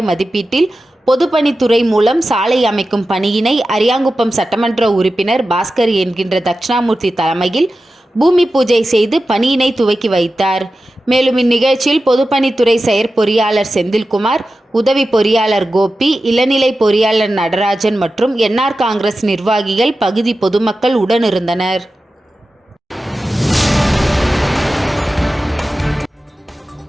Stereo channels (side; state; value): both; normal; correlation 0.93